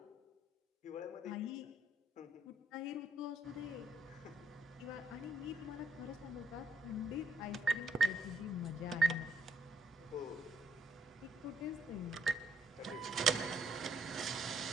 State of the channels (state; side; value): normal; both; correlation 0.73